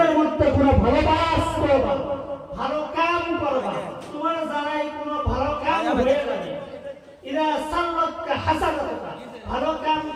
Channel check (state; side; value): identical; both; correlation 1.00